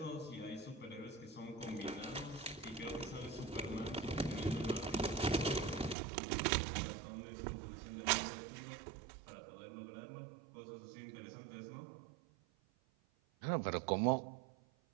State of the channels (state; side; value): drops out; left; at 6.0 s